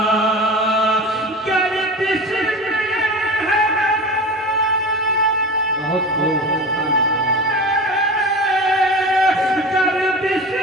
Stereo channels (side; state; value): both; normal; correlation 0.31